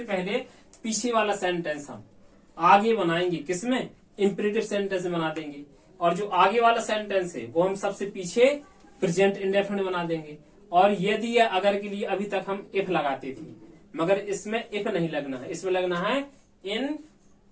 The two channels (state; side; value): identical; both; correlation 1.00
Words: पहले पीछे वाला सेंटेंस हम आगे बनाएंगे, किसमें? इंपरेटिव सेंटेंस में बना देंगे। और जो आगे वाला सेंटेंस है वो हम सबसे पीछे प्रेजेंट इंडेफिनिट बना देंगे। और यदि या अगर के लिए अभी तक हम इफ लगाते थे, मगर इसमें इफ नहीं लगना है, इसमें लगना है इन